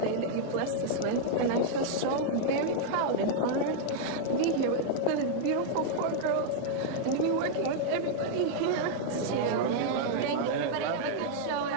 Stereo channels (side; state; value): both; different; correlation -0.01